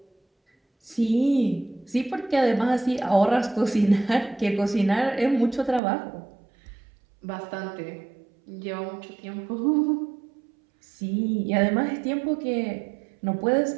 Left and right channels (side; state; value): left; drops out; at 5.8 s